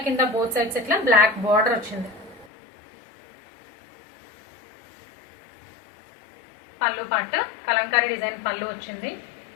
కింద బోత్ సైడ్స్ ఇట్లా బ్లాక్ బార్డర్ వచ్చింది. పళ్ళు పార్ట్ కలంకారీ డిజైన్ పళ్ళు వచ్చింది.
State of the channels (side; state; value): right; drops out; at 2.5 s